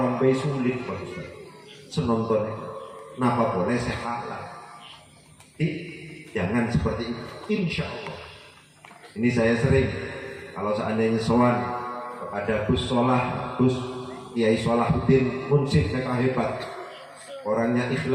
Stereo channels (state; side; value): identical; both; correlation 1.00